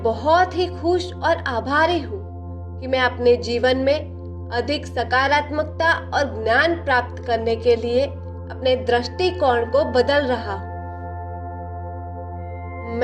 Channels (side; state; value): both; identical; correlation 1.00